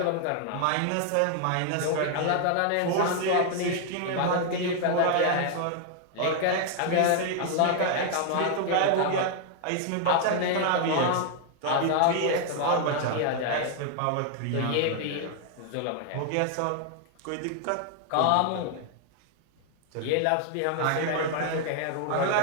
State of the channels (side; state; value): both; different; correlation 0.00